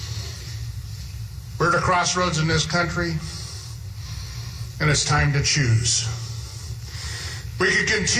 We're at a crossroads in this country, and it's time to choose. We could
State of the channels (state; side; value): identical; both; correlation 1.00